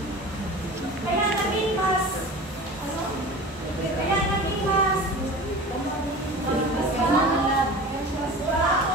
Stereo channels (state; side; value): normal; both; correlation 0.36